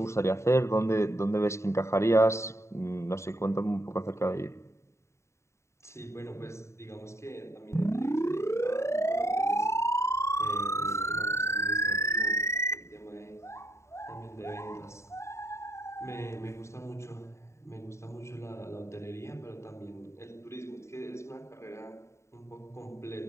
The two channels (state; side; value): late; right; 0.14 ms